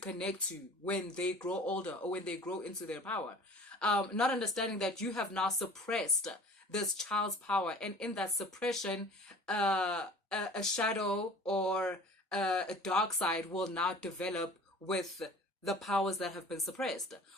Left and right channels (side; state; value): both; normal; correlation 0.45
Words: to when they grow older or when they grow into their power. Not understanding that you have now suppressed this child's power, and in that suppression, a shadow or a dark side will now develop with the powers that have been suppressed.